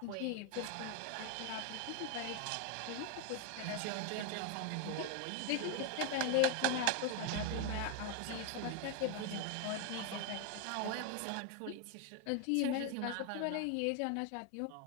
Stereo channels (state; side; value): different; both; correlation 0.01